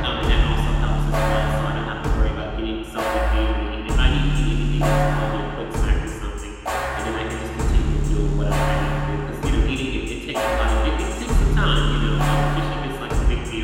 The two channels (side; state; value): both; identical; correlation 1.00